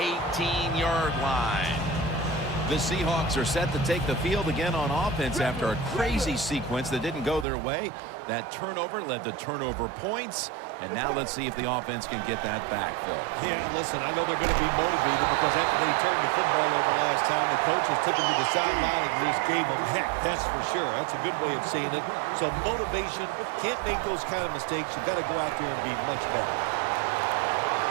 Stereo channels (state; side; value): drops out; left; at 7.5 s